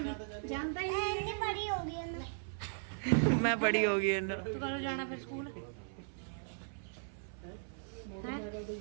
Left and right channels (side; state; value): left; silent; 53 dB below the other